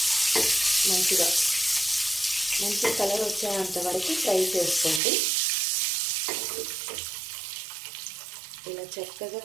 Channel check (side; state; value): left; drops out; at 5.0 s